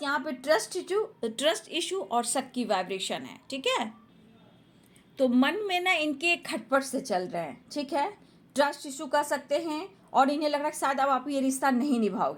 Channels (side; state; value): both; identical; correlation 1.00